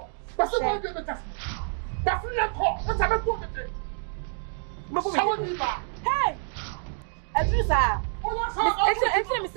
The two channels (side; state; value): left; silent; 58 dB below the other